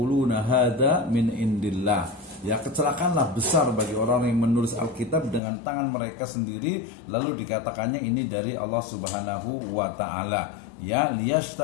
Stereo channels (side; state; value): right; drops out; at 5.4 s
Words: hadza min indillah. Ya, kecelakaanlah besar bagi orang yang menulis Alkitab dengan tangan mereka sendiri, lalu dikatakannya ini dari Allah Subhanahu wa taala. Ya,